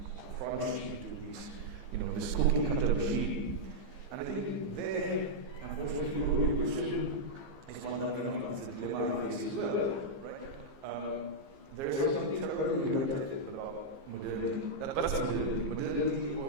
crunched into these, this cookie cutter machine. And I think there, unfortunately, your question is one that is a dilemma I face as well, right? There is something terribly reductive about modernity. That's modernity. Modernity,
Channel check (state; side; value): late; left; 15 ms